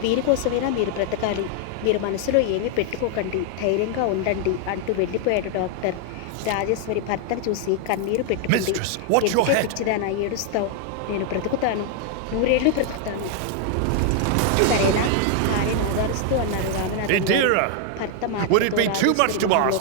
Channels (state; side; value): different; both; correlation 0.00